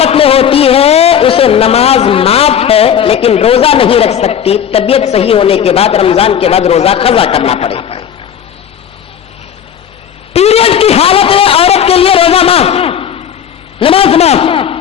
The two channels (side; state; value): right; quieter; 8.7 dB